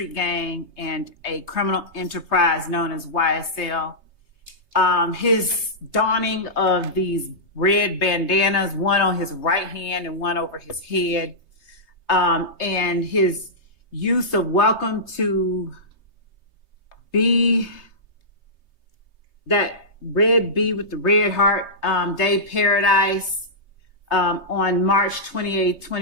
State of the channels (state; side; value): late; right; 3.3 ms